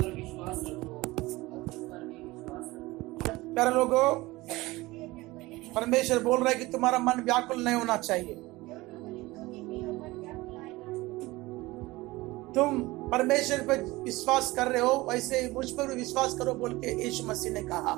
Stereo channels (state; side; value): quieter; left; 20.4 dB